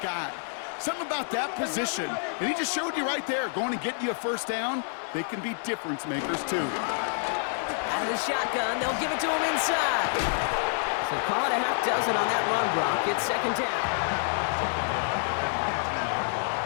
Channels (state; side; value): silent; right; digital silence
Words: guy. Something about that position. And he just showed you right there, going to get you a first down. They can be difference makers, too. Out of the shotgun, they'll give it to him inside. So call it a half dozen on that run block. It's second down.